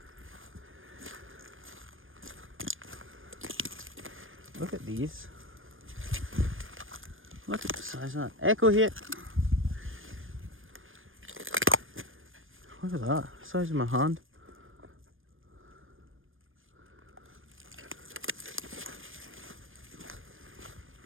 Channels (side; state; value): left; late; 0.59 ms